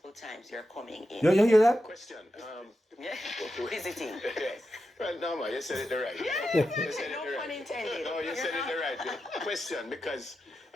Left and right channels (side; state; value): both; normal; correlation 0.89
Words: times you're coming in. You hear that? Question. Yeah. Visiting. Well, no, man, you said it the right way. Yeah. You said it No the pun right. intended. No, you said it the right way. Question, because